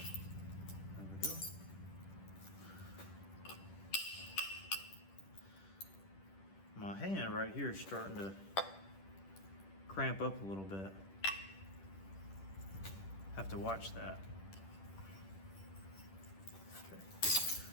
My hand right here is starting to cramp up a little bit. Have to watch that. Okay.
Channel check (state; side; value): late; right; 10 ms